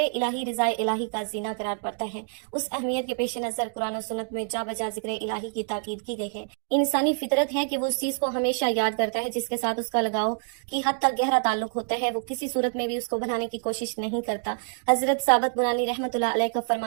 رضا الہی کا زینہ قرار پڑتا ہے۔ اس اہمیت کے پیش نظر قرآن و سنت میں جا بجا ذکر الہی کی تاکید کی گئی ہے۔ انسانی فطرت ہے کہ وہ اس چیز کو ہمیشہ یاد کرتا ہے جس کے ساتھ اس کا لگاؤ کی حد تک گہرا تعلق ہوتا ہے، وہ کسی صورت میں بھی اس کو بنانے کی کوشش نہیں کرتا۔ حضرت ثابت بنانی رحمۃ اللہ علیہ کا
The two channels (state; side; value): silent; left; 56 dB below the other